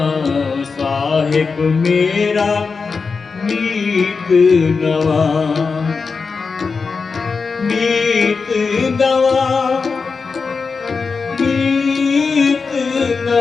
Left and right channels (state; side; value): quieter; right; 4.8 dB